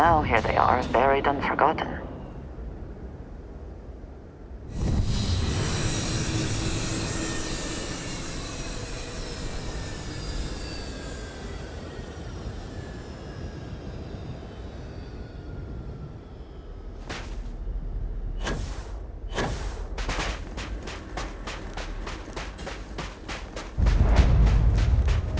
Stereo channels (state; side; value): identical; both; correlation 1.00